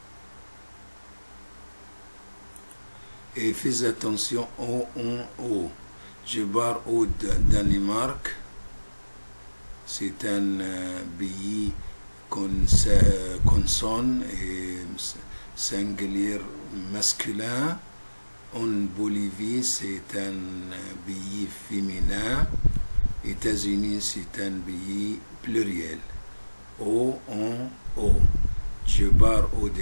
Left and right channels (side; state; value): both; inverted; correlation -1.00